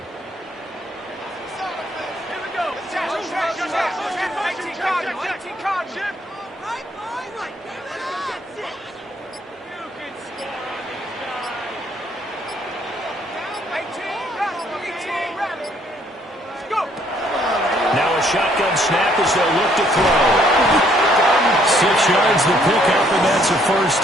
Now a shotgun snap as they'll look to throw. 6 yards to pick up, and that's a 1st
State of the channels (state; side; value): normal; both; correlation 0.66